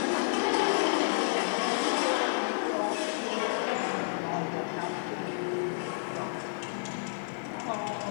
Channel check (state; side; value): silent; right; digital silence